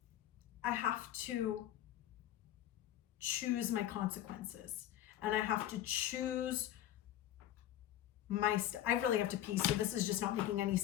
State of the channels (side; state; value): right; quieter; 12.5 dB